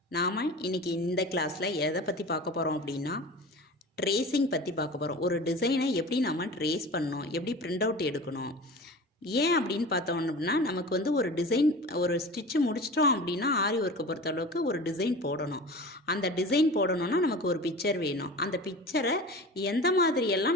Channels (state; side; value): normal; both; correlation 0.35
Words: நாம இன்னைக்கு இந்த கிளாஸ்ல எதை பற்றி பார்க்க போகிறோம் அப்படின்னா ட்ரேசிங் பற்றி பார்க்க போகிறோம். ஒரு டிசைனை எப்படி நம்ம ட்ரேஸ் பண்ணணும், எப்படி பிரிண்ட் அவுட் எடுக்கணும். ஏன் அப்படின்னு பார்த்தோம் அப்படின்னா நமக்கு வந்து ஒரு டிசைன் ஒரு ஸ்டிச்சு முடிச்சிட்டோம் அப்படின்னா ஆரி ஒர்க்கை பொறுத்தளவுக்கு ஒரு டிசைன் போடணும். அந்த டிசைன் போடணும்னா நமக்கு ஒரு பிக்சர் வேணும். அந்த பிக்சரை எந்த